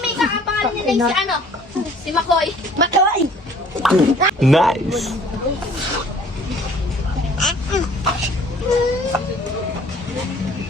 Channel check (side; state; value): both; normal; correlation 0.55